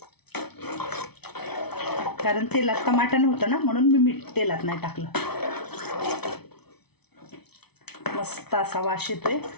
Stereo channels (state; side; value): late; right; 0.98 ms